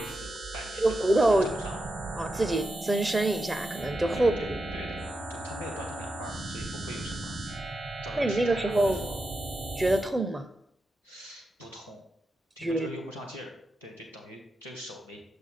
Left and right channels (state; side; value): normal; both; correlation 0.88